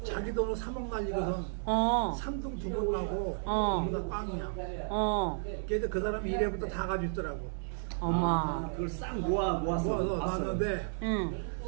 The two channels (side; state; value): left; silent; 56 dB below the other